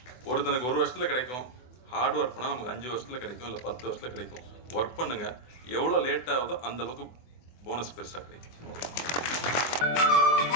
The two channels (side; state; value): right; late; 24 ms